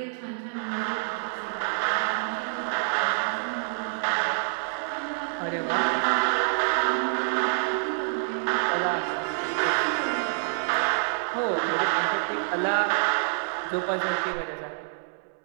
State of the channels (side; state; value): left; silent; 60 dB below the other